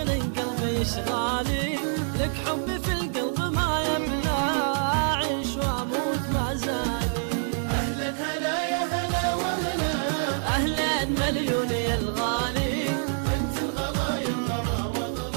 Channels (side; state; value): left; silent; 61 dB below the other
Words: قلبي اشغالي، لك حبي في القلب ما يبلى، اعيش واموت ما زالي. اهلا هلا يا هلا وهلا، اهلا مليون يا الغالي، انت الغلا يا الغلا